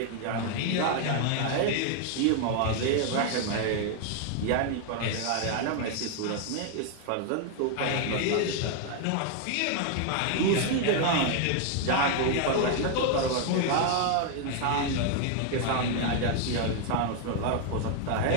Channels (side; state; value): both; different; correlation 0.00